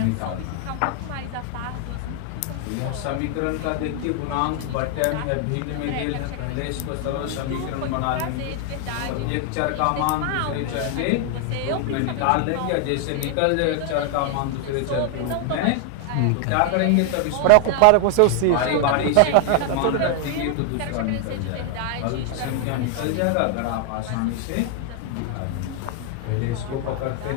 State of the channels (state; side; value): different; both; correlation 0.00